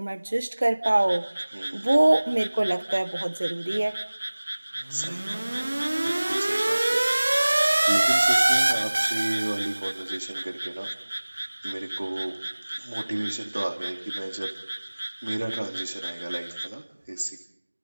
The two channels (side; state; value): both; inverted; correlation -1.00